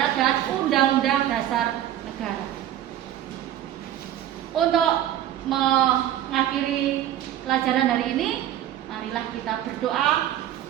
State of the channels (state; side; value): quieter; left; 11.9 dB